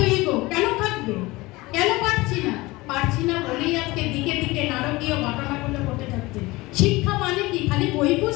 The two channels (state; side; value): quieter; right; 21.2 dB